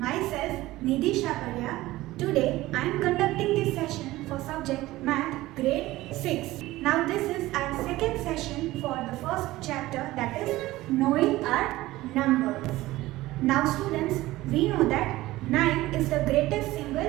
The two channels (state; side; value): quieter; left; 17.5 dB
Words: Nidhi Shaparya. Today I am conducting this session for subject Math grade 6. Now this is our second session for the first chapter, that is knowing our numbers. Now students, we know that 9 is the greatest